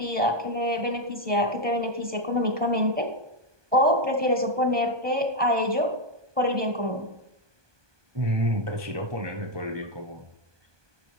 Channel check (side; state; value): left; late; 1.2 ms